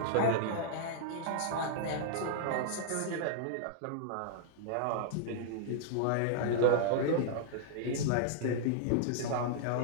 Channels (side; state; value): both; different; correlation -0.01